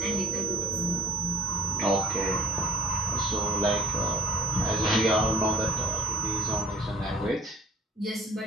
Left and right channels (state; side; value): normal; both; correlation 0.42